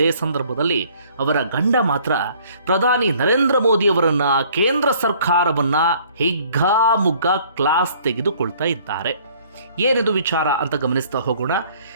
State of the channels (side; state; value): both; inverted; correlation -0.57